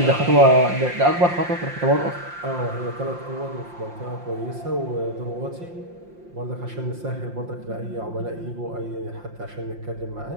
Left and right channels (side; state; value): left; late; 5.7 ms